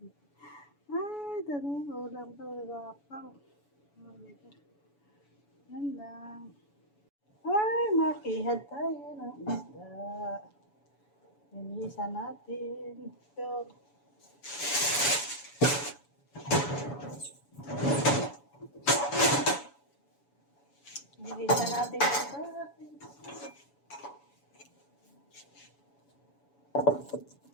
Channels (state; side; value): late; right; 7.0 ms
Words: Ay, dali. Ulam ko. Gwapa. O, diba? Yan lang. Ay, makihad tayo ng isda. Linisan natin. Ito. Linisan natin ito.